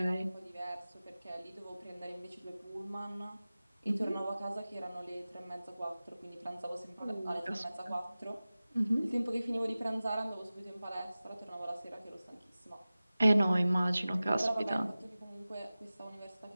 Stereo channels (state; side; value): inverted; both; correlation -0.97